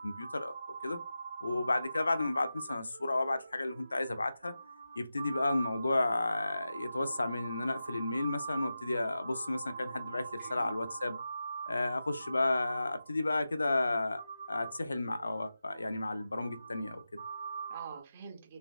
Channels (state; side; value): inverted; both; correlation -0.92